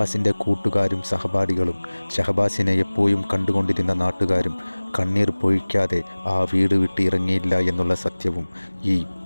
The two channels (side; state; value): both; inverted; correlation -1.00